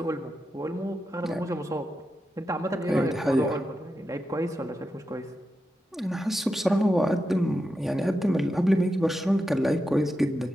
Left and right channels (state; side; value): normal; both; correlation 0.88